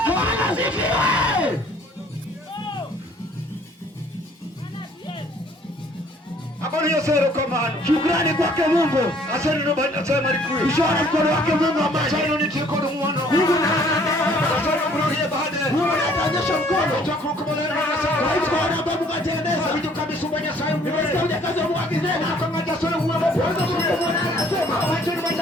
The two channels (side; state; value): both; normal; correlation 0.59